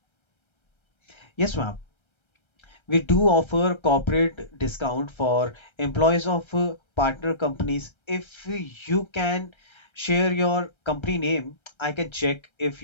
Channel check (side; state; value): right; late; 1.3 ms